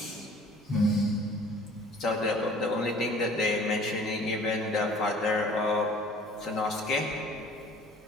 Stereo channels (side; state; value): both; normal; correlation 0.50